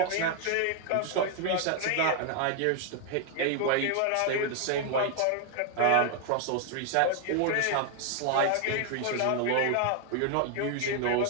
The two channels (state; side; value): different; both; correlation 0.00